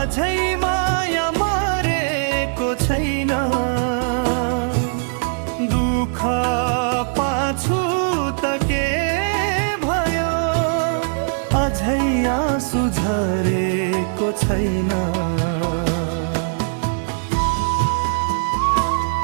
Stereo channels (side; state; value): left; silent; digital silence